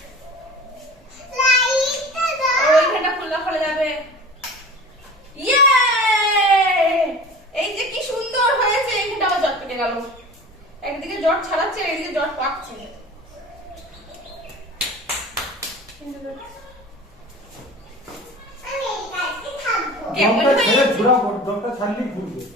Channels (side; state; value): both; normal; correlation 0.39